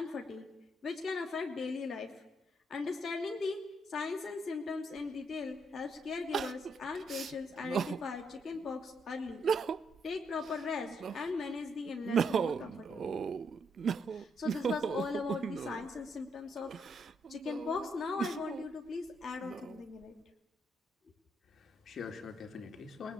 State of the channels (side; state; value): both; normal; correlation 0.76